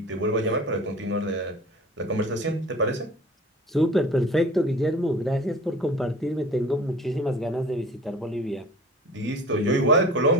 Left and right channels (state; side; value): normal; both; correlation 0.43